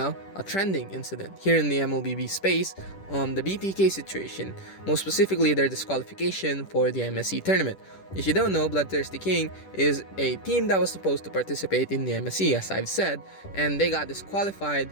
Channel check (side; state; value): right; late; 10 ms